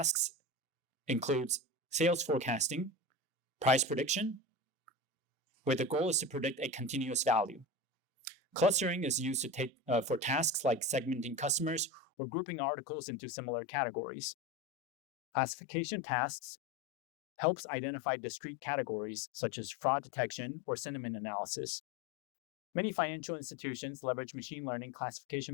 includes sales forecasting, price prediction, where the goal is to predict a continuous value. Clustering is used for tasks like segmenting customers or grouping articles into similar categories. Classification tasks helps identify discrete categories such as fraud detection or sentiment analysis. Many financial institutions leverage machine learning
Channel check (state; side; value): drops out; right; at 12.1 s